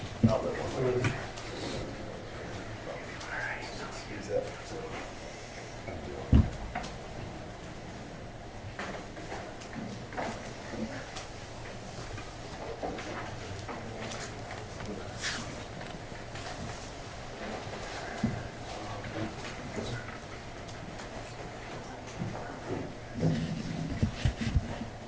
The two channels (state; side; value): identical; both; correlation 1.00